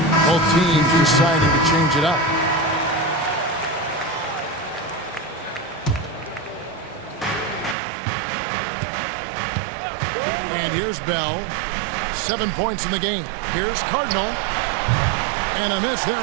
Both teams deciding to change it up. And here's Bell. 7 points in the game. Here's Cardinal. And a miss there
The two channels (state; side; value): drops out; left; at 7.8 s